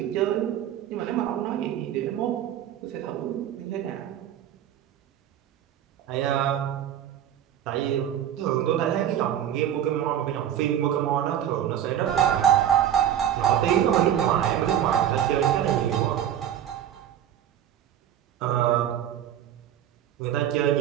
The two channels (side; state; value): left; quieter; 10.5 dB